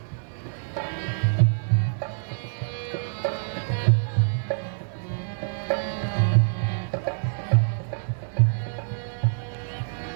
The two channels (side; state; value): left; silent; digital silence